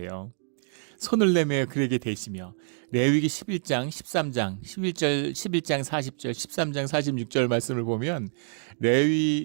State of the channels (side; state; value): left; silent; digital silence